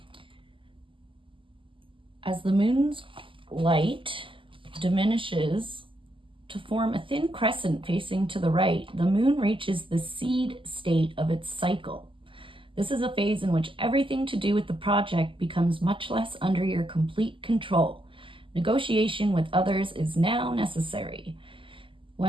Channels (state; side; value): late; left; 0.25 ms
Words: As the moon's light diminishes to form a thin crescent facing to the right, the moon reaches the seed state of its cycle. This is a phase in which everything to do with the project becomes much less under your complete control. Negotiation with others is now necessary.